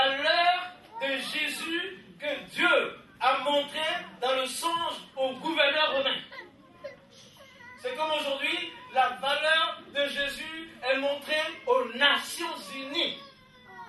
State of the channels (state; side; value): identical; both; correlation 1.00